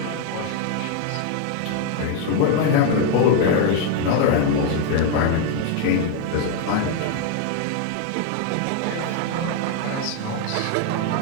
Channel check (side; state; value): both; different; correlation 0.01